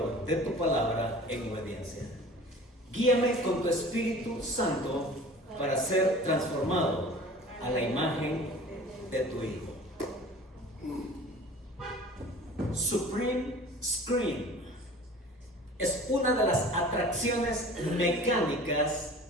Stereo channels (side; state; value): both; normal; correlation 0.43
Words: de tu palabra en obediencia. Guíame con tu Espíritu Santo para ser transformado a la imagen de tu Hijo. Supreme Screen es una de las atracciones